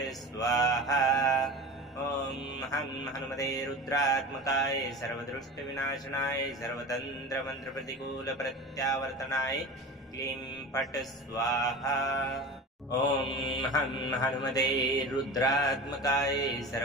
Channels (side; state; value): both; normal; correlation 0.31